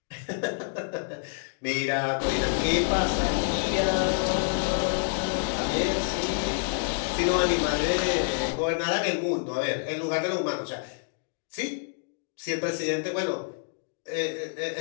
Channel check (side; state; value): right; silent; digital silence